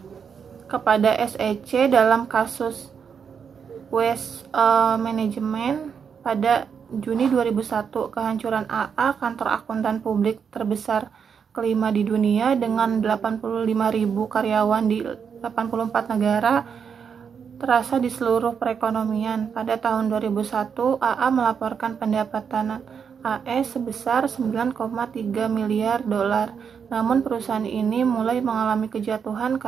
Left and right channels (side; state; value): left; quieter; 6.8 dB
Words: kepada SEC dalam kasus Waste Management pada Juni 2001. Kehancuran AA, kantor akuntan publik terbesar kelima di dunia dengan 85.000 karyawan di 84 negara, terasa di seluruh perekonomian. Pada tahun 2001, AA melaporkan pendapatan AS sebesar $9,3 miliar. Namun perusahaan ini mulai mengalami kejatuhan